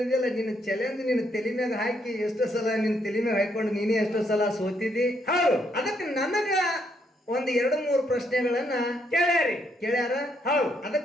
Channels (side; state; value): both; normal; correlation 0.74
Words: ಅಂದಿಲ್ಲ, ನಿನ್ನ ಚಾಲೆಂಜ್ ನಿನ್ನ ತಲೆ ಮ್ಯಾಗ ಹಾಕಿ ಎಷ್ಟೋ ಸಲ ನಿನ್ನ ತಲೆ ಮ್ಯಾಗ ಹಾಕೊಂಡು ನೀನೇ ಎಷ್ಟೋ ಸಲ ಸೋತಿದಿ. ಹೌದು ಅದಕ್ಕೆ ನನಗ ಒಂದು 2-3 ಪ್ರಶ್ನೆಗಳನ್ನ ಕೇಳ್ಯಾರ. ಹೌದು